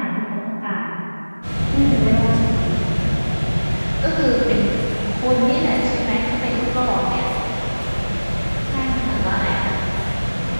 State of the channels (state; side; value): inverted; both; correlation -1.00